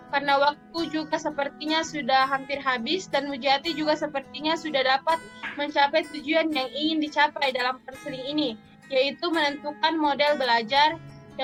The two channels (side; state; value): both; identical; correlation 1.00